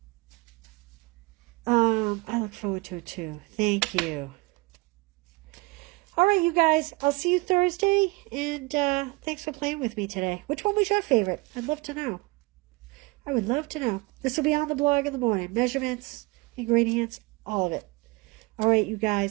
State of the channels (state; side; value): quieter; left; 24.8 dB